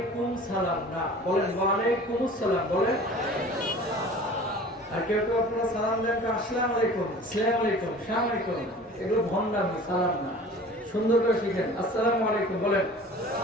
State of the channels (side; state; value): both; normal; correlation 0.43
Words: সালাম, না, বলেন ওয়া আলাইকুমুস সালাম। বলেন। আর কেউ কেউ আপনারা সালাম দেন আসসালামু আলাইকুম, আসসালামু আলাইকুম, আসসালামু আলাইকুম। এগুলো ভণ্ডামি, সালাম না। সুন্দর করে শিখেন, আসসালামু আলাইকুম বলেন।